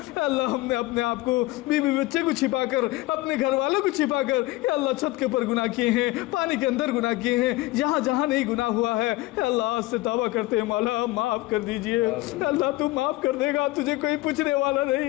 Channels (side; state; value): right; quieter; 19.0 dB